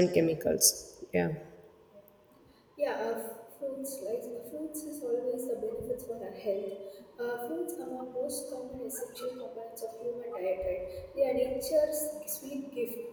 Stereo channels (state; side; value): identical; both; correlation 1.00